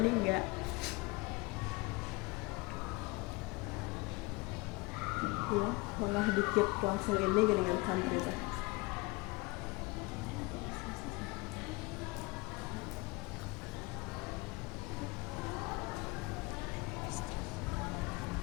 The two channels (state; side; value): quieter; right; 25.0 dB